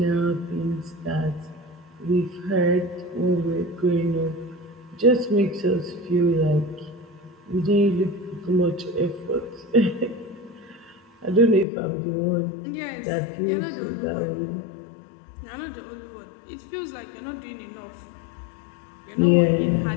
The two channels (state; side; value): drops out; right; at 11.7 s